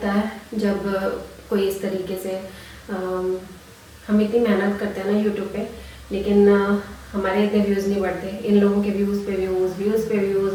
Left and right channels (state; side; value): identical; both; correlation 1.00